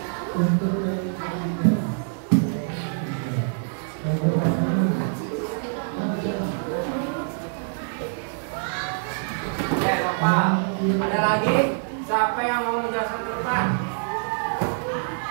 Ya, Bapak. Ada lagi? Siapa yang mau menjelaskan ke depan?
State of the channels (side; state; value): left; silent; 57 dB below the other